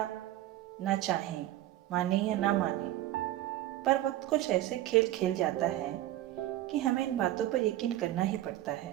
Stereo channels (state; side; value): quieter; left; 14.6 dB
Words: ना चाहें, माने या ना माने, पर वक्त कुछ ऐसे खेल खेल जाता है कि हमें इन बातों पर यकीन करना ही पड़ता है।